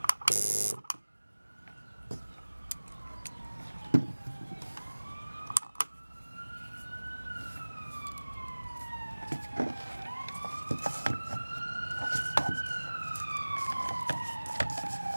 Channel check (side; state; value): both; inverted; correlation -1.00